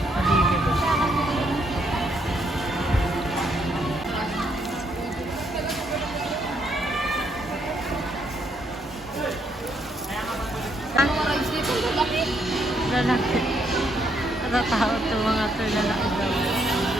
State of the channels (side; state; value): both; normal; correlation 0.74